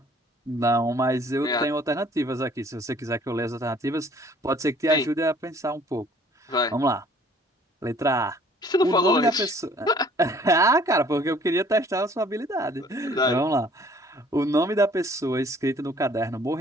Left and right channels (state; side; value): normal; both; correlation 0.57